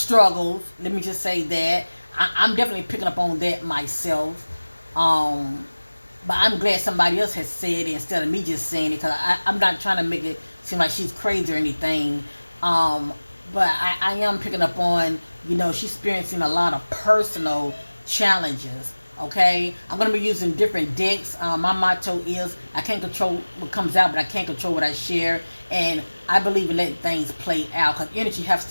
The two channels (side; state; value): both; inverted; correlation -1.00